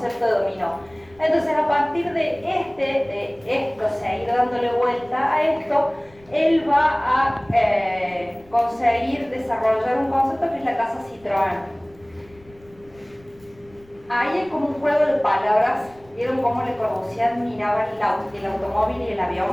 de dominó. Entonces, a partir de esto, seguir dándole vuelta a esto, él va a conseguir desarrollar un concepto que es la casa Citroën. Ahí hay como un juego de palabras. ¿Vieron cómo Le Corbusier miraba el automóvil y el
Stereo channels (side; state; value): left; noise; rumble, 27 dB below the sound